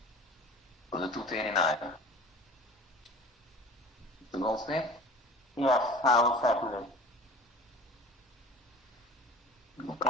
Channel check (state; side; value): normal; both; correlation 0.40